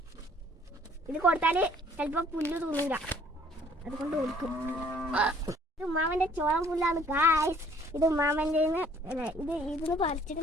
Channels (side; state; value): both; normal; correlation 0.59